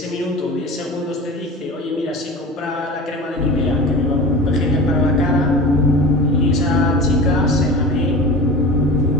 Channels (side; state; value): both; normal; correlation 0.33